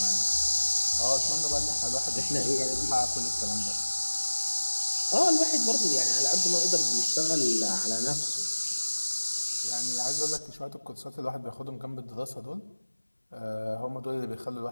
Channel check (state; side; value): inverted; both; correlation -1.00